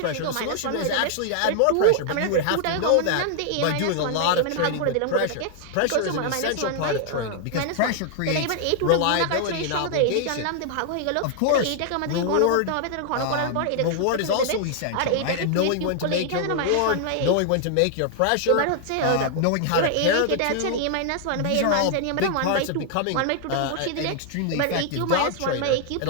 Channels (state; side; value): different; both; correlation -0.01